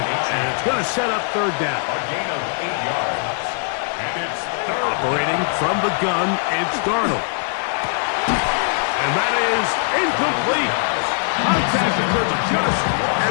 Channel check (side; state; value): right; silent; 65 dB below the other